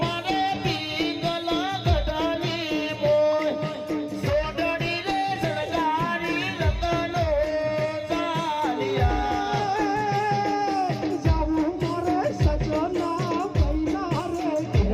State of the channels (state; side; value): identical; both; correlation 1.00